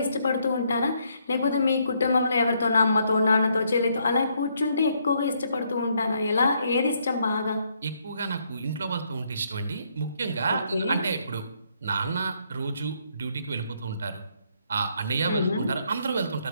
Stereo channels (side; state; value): both; inverted; correlation -0.72